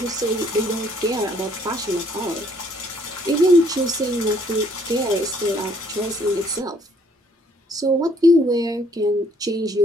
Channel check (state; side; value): normal; both; correlation 0.64